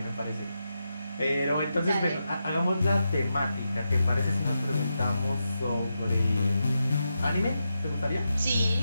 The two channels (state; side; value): inverted; both; correlation -0.87